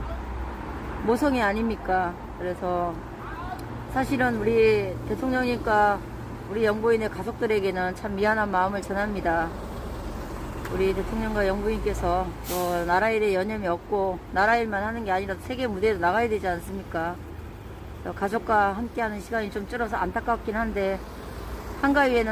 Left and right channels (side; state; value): both; identical; correlation 1.00